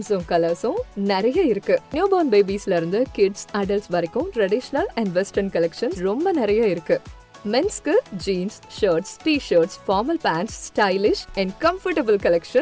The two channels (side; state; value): both; identical; correlation 1.00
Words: கலர்ஸும் நிறைய இருக்கு. நியூ பார்ன் பேபிஸ்ல இருந்து கிட்ஸ், அடல்ட்ஸ் வரைக்கும் ட்ரெடிஷனல் அண்ட் வெஸ்டர்ன் கலெக்ஷன்ஸ் ரொம்ப நிறைய இருக்கு. மென்ஸ்க்கு jeans, shirts, t-shirts, formal pants, stylish and comfortable